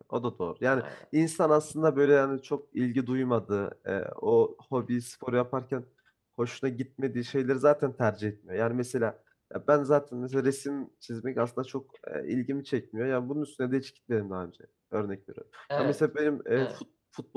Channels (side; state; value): both; identical; correlation 1.00